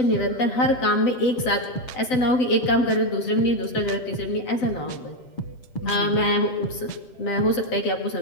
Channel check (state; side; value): late; right; 7.9 ms